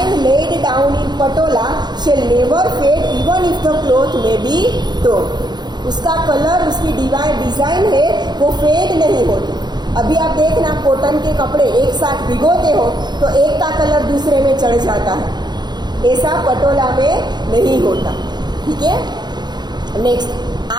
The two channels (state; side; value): late; left; 0.21 ms